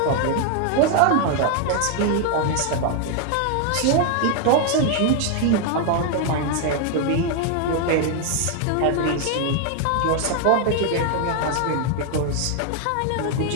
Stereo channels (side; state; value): both; different; correlation 0.00